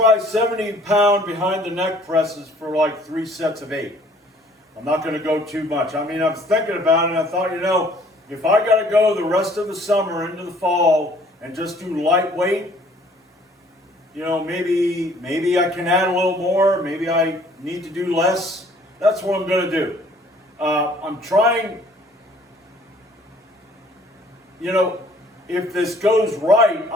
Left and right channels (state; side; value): normal; both; correlation 0.57